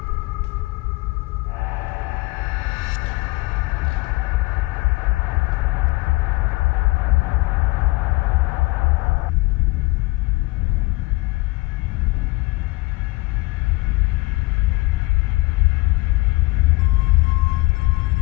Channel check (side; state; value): right; quieter; 22.3 dB